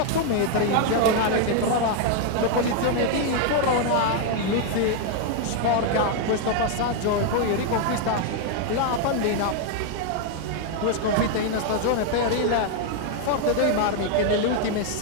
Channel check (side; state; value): both; different; correlation 0.00